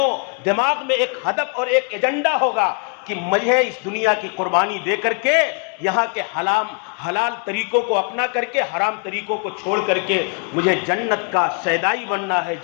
دماغ میں ایک ہدف اور ایک ایجنڈا ہوگا کہ مجھے اس دنیا کی قربانی دے کر کے یہاں کے حلال طریقوں کو اپنا کر کے حرام طریقوں کو چھوڑ کر کے مجھے جنت کا شیدائی بننا ہے،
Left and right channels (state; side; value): quieter; right; 34.1 dB